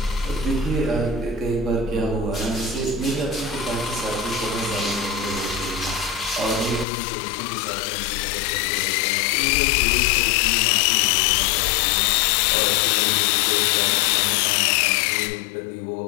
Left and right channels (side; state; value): right; drops out; at 6.9 s